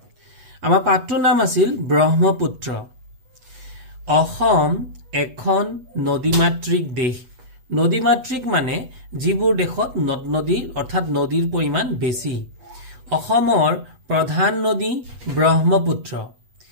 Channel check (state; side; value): late; left; 8.1 ms